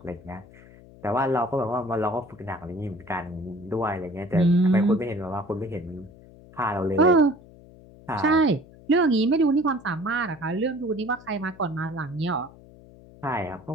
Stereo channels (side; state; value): left; noise; hum, 22 dB below the sound